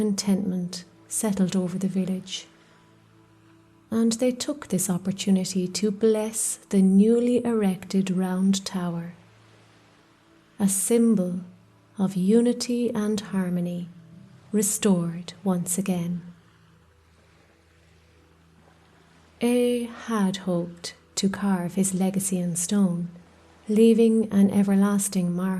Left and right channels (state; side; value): identical; both; correlation 1.00